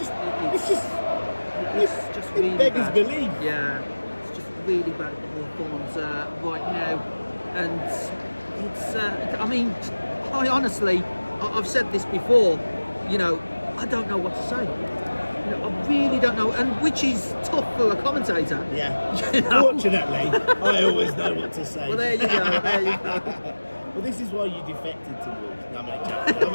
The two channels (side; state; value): both; inverted; correlation -1.00